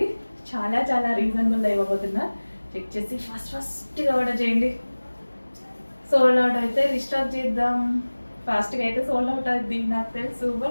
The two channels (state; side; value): inverted; both; correlation -1.00